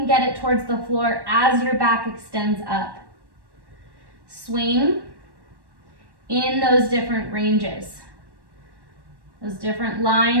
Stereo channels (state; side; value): late; left; 1.1 ms